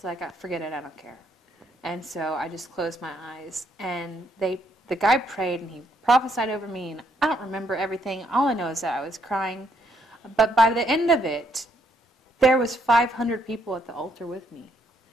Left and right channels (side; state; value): both; normal; correlation 0.72